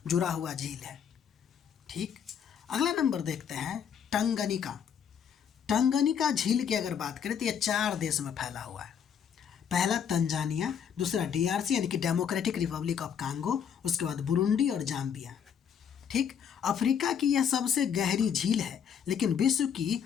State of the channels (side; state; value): right; quieter; 7.9 dB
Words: जुड़ा हुआ झील है। ठीक, अगला नंबर देखते हैं टंगनिका। टंगनिका झील की अगर बात करें तो ये 4 देश में फैला हुआ है। पहला तंजानिया, दूसरा DRC यानी कि डेमोक्रेटिक रिपब्लिक ऑफ कांगो, उसके बाद बुरुंडी और जाम्बिया। ठीक, अफ्रीका की यह सबसे गहरी झील है, लेकिन विश्व की